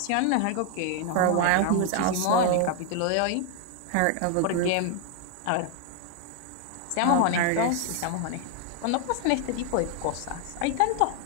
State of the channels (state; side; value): different; both; correlation 0.00